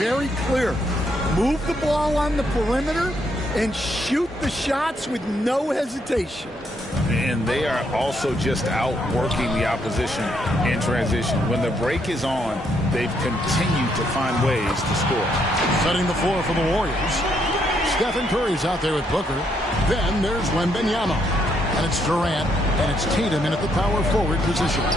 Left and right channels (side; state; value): both; normal; correlation 0.74